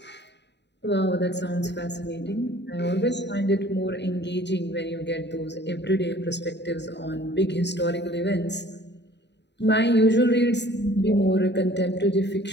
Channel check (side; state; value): right; late; 0.50 ms